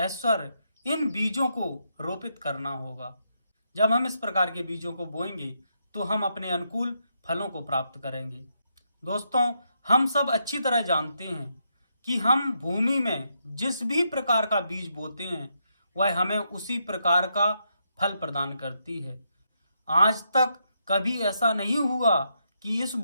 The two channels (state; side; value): inverted; both; correlation -0.80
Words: इन बीजों को रोपित करना होगा। जब हम इस प्रकार के बीजों को बोएंगे तो हम अपने अनुकूल फलों को प्राप्त करेंगे। दोस्तों, हम सब अच्छी तरह जानते हैं कि हम भूमि में जिस भी प्रकार का बीज बोते हैं वह हमें उसी प्रकार का फल प्रदान करती है। आज तक कभी ऐसा नहीं हुआ कि इस